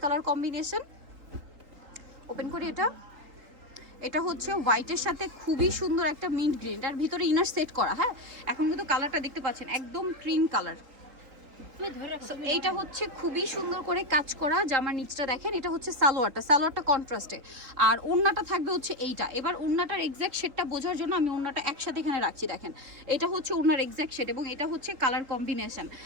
কালার কম্বিনেশন। ওপেন করি এটা। এটা হচ্ছে হোয়াইটের সাথে খুবই সুন্দর একটা মিন্ট গ্রিন, এটার ভিতরে ইনার সেট করা। হ্যাঁ, এখন কিন্তু কালারটা দেখতে পাচ্ছেন একদম ক্রিম কালার। এইটা হচ্ছে খুবই সুন্দর করে কাজ করা। জামার নিচটা দেখেন, এটা হচ্ছে সালোয়ারটা কন্ট্রাস্টে, আর ওড়নাটা থাকবে হচ্ছে এইটা। এবার ওড়নাটার এক্স্যাক্ট শেডটা বোঝার জন্য আমি ওড়নাটা একসাথে এখানে রাখছি। দেখেন, এটা হচ্ছে ওড়নার এক্স্যাক্ট শেড এবং এটা হচ্ছে কালার কম্বিনেশন।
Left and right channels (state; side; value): late; left; 3.8 ms